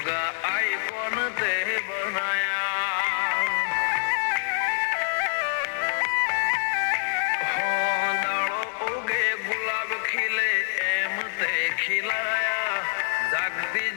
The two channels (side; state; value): right; silent; 61 dB below the other